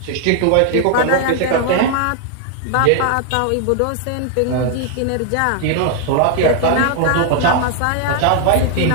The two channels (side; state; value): both; different; correlation 0.00